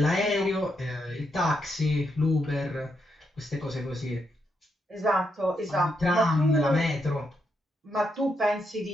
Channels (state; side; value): normal; both; correlation 0.80